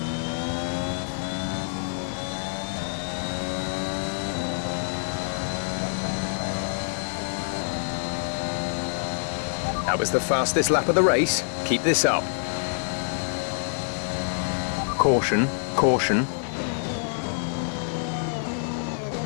That was the fastest lap of the race. Keep this up. Caution, caution.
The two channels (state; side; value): silent; right; 61 dB below the other